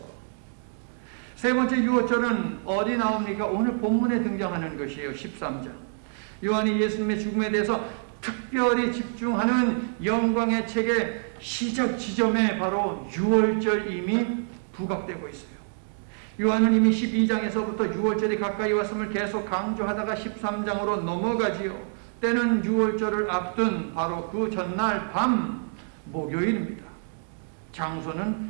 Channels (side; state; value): left; silent; digital silence